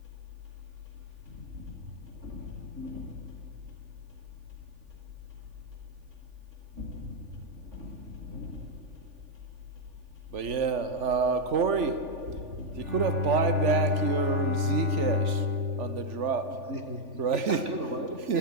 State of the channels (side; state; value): left; late; 3.5 ms